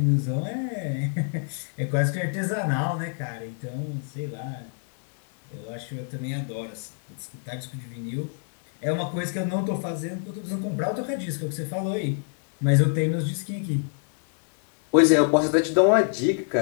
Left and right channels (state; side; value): silent; right; 60 dB below the other